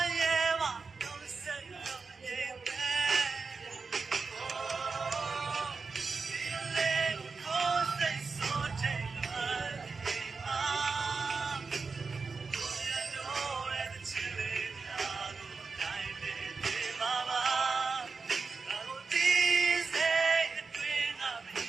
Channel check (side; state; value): left; quieter; 4.6 dB